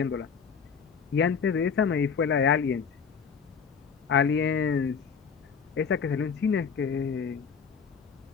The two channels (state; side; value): quieter; right; 6.2 dB